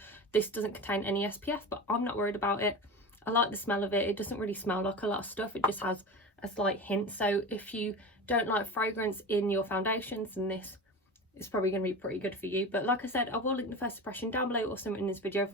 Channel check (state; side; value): normal; both; correlation 0.29